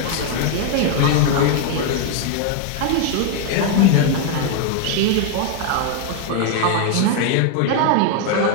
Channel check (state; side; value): different; both; correlation 0.00